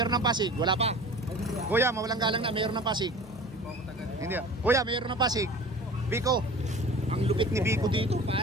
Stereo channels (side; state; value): both; normal; correlation 0.41